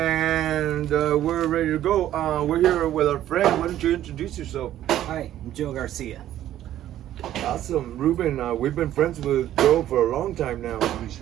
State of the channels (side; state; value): left; quieter; 12.4 dB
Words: we're ready to go. We're here with our friend. Why don't you introduce yourself? Hi, I'm Joe Garcia. Awesome. Ruben, we've been friends with Joe for a long time now. We